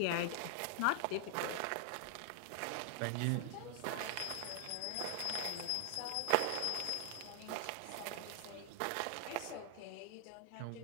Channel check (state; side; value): different; both; correlation 0.00